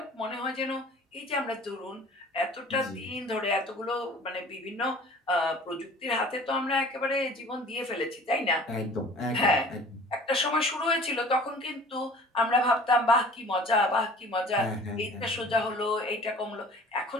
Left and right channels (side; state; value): both; normal; correlation 0.47